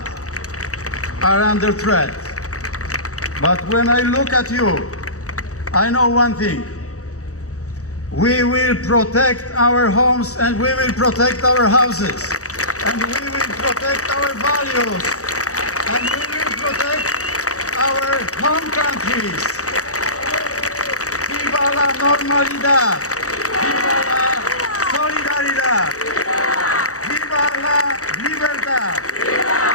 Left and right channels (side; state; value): right; late; 0.65 ms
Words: are under threat. But when I look at you, I know one thing. We will protect our homes and we will protect our houses. And we will protect our values. And we will protect our home countries. Viva la normalidad. Viva la solidaridad. Viva la libertad.